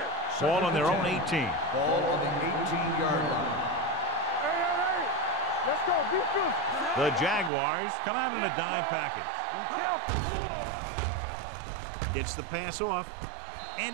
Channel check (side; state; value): left; drops out; at 7.5 s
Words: Ball on their own 18. Ball on the 18-yard line. Hey. Let's go, defense. The Jaguars come out in a dime package. Gets the pass off,